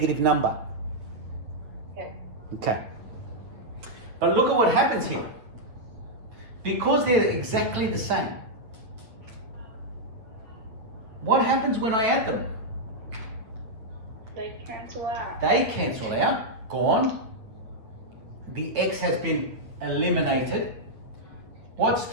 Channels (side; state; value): left; late; 9.0 ms